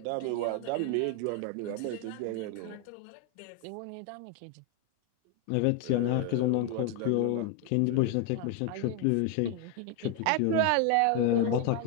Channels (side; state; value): both; different; correlation 0.01